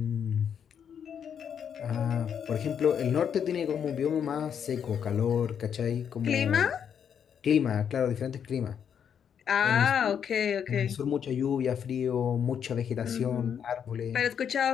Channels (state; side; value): quieter; right; 8.0 dB